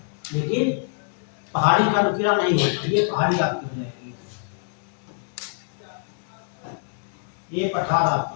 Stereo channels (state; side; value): silent; right; digital silence